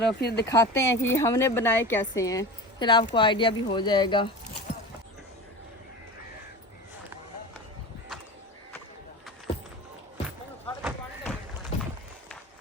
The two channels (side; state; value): both; normal; correlation 0.31